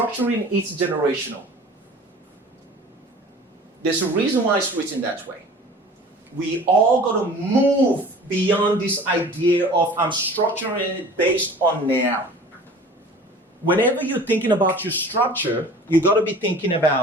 it generational. There's a reason why it's written that way. we all got to move beyond this idea of I'm structuring it based on now. Whenever you're thinking about your structure, you got to be thinking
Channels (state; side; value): normal; both; correlation 0.44